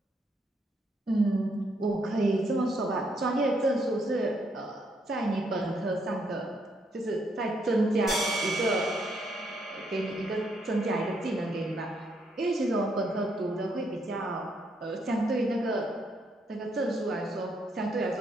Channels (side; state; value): both; normal; correlation 0.74